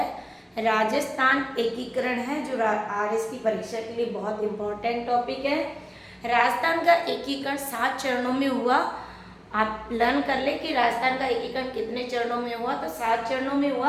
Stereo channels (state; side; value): identical; both; correlation 1.00